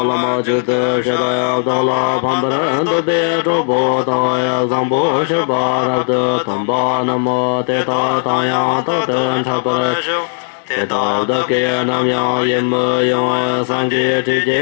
la ma ju de sha da ya da la pam ba ran de de do bo ta ya zang bo sha ba ra de tam ba na mo te ta ta ya ta de cha pa ra te ta da ke nam ya yin mo yo san ji ti je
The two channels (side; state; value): right; silent; digital silence